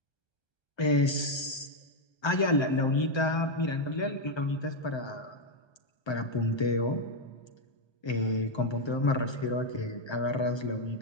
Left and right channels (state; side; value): late; right; 1.3 ms